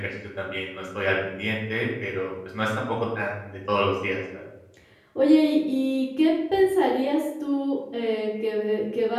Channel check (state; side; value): identical; both; correlation 1.00